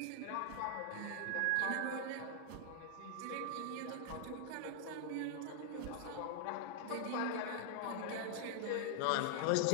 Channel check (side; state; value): both; different; correlation -0.01